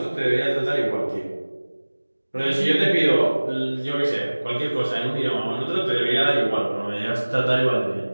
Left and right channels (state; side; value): inverted; both; correlation -1.00